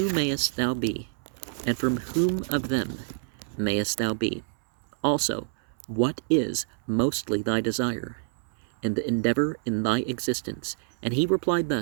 mayest thou be, and from whom of them mayest thou be? Also, what is mostly thy desire, and the endeavor in thy existence? And he replied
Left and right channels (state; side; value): silent; left; 60 dB below the other